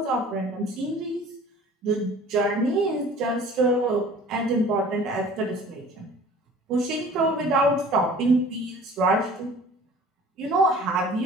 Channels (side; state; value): both; normal; correlation 0.47